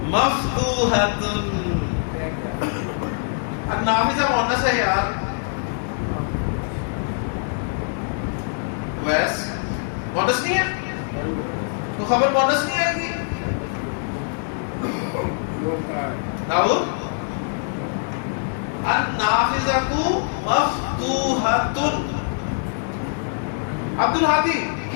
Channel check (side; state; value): right; silent; digital silence